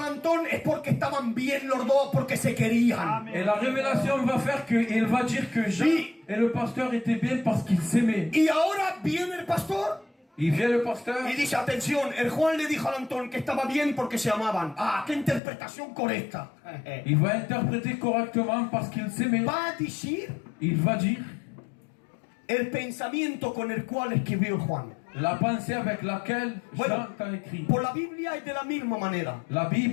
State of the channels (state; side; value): drops out; right; at 15.4 s